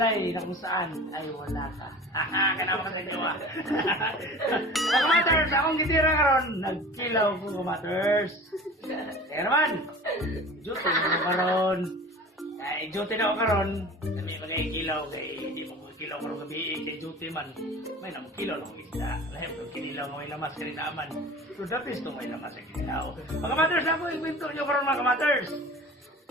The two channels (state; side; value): normal; both; correlation 0.39